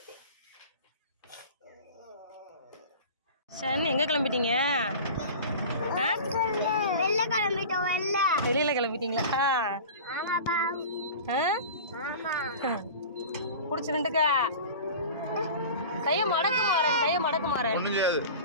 சரி, எங்கே கிளம்பிட்டீங்க? வெளியில் கிளம்பிட்டீங்களா? பிடிச்சிருந்துக்கா. கையை மடக்கு மாறேன், கையை மடக்கு மாறேன்.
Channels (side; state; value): both; inverted; correlation -0.36